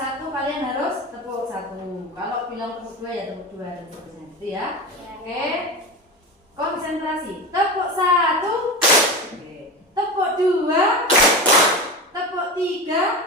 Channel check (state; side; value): normal; both; correlation 0.25